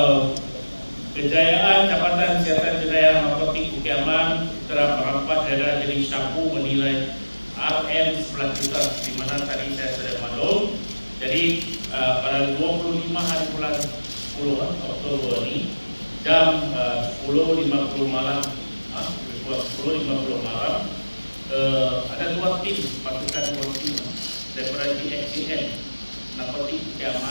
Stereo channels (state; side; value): inverted; both; correlation -1.00